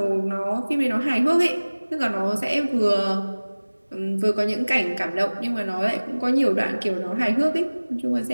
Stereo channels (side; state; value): both; inverted; correlation -1.00